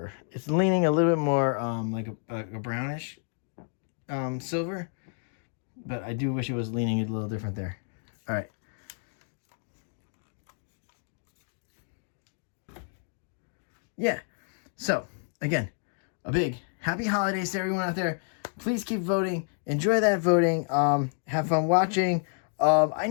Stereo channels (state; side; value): silent; right; 55 dB below the other